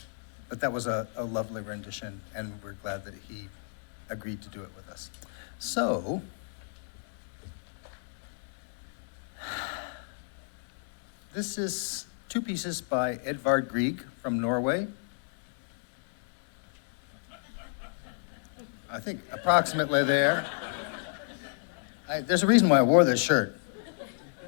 that was a lovely rendition, and we're glad that he agreed to do it with us. So, this is two pieces by Edvard Grieg from Norway. I think approximately there. There's a reason why I wore this shirt.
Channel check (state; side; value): silent; right; digital silence